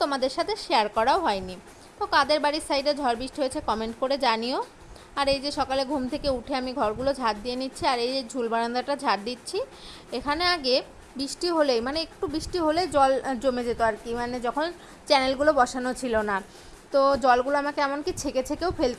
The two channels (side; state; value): both; identical; correlation 1.00